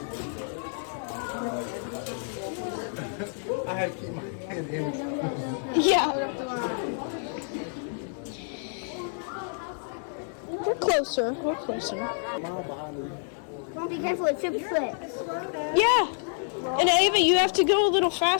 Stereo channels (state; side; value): silent; right; 56 dB below the other